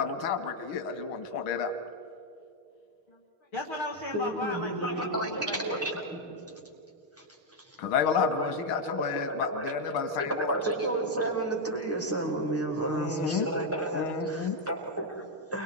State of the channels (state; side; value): late; right; 6.5 ms